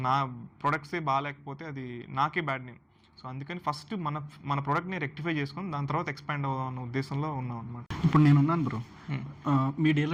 నా ప్రొడక్ట్సే బాగాలేకపోతే అది నాకే బ్యాడ్ నేమ్. సో అందుకని ఫస్ట్ మన ప్రోడక్ట్ని రెక్టిఫై చేసుకొని దాని తర్వాత ఎక్స్పాండ్ అవుదాం అన్న ఉద్దేశంలో ఉన్నాం అనమాట. ఇప్పుడు నేను ఉన్నాను బ్రో, మీ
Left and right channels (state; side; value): identical; both; correlation 1.00